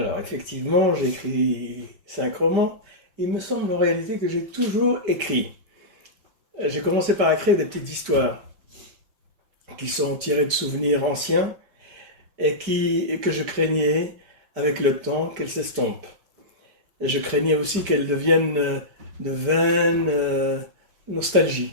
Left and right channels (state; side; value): late; left; 5.0 ms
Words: effectivement, j'ai écrit 5 romans. Il me semble en réalité que j'ai toujours écrit. J'ai commencé par écrire des petites histoires qui sont tirées de souvenirs anciens et que je craignais avec le temps qu'elles s'estompent. Et je craignais aussi qu'elles deviennent de vaines nostalgie.